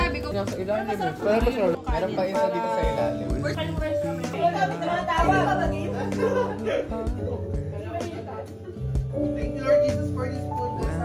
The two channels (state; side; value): identical; both; correlation 1.00